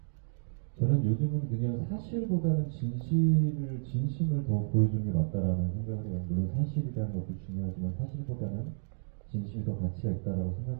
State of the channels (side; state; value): left; silent; digital silence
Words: 저는 요즘은 그냥 사실보다는 진심을 더 보여주는 게 맞다라는 생각을 해요. 물론 사실이라는 것도 중요하지만 사실보다는 진심이 더 가치가 있다라고